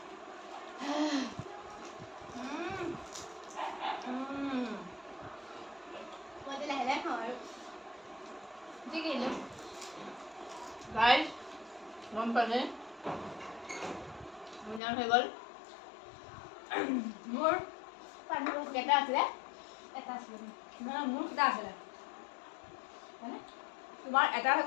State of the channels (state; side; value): drops out; right; at 14.8 s